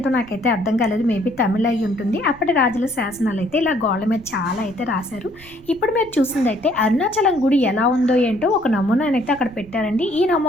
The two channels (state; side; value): noise; right; rumble, 23 dB below the sound